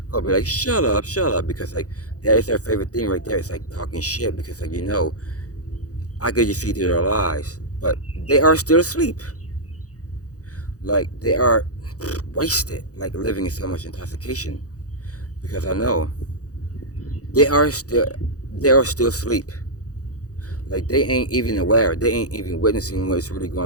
I'll be like, shut up, because like that is their favorite thing right there. It's like talking shit, because like I could just see through their lies, but they are still asleep. Like they are wasted, like living in so much intoxication, because I know they are still asleep. Like they ain't even aware. They ain't even witnessing what's really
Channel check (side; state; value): right; late; 0.67 ms